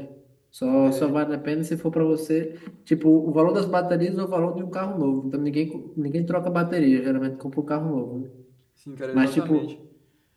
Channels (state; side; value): identical; both; correlation 1.00